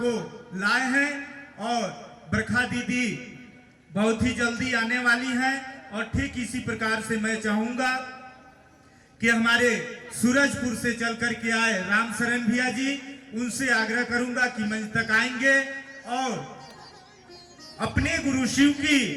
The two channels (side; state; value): both; identical; correlation 1.00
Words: लाए हैं, और बरखा दीदी बहुत ही जल्दी आने वाली हैं, और ठीक इसी प्रकार से मैं चाहूंगा कि हमारे सूरजपुर से चल कर के आए रामशरण भैया जी, उनसे आग्रह करूंगा कि मंच तक आएंगे और अपने गुरु शिव की